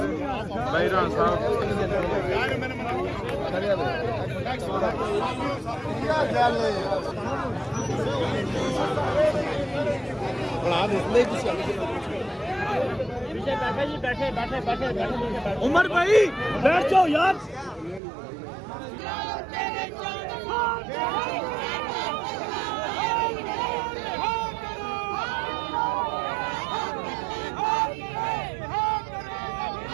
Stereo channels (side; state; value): left; drops out; at 18.0 s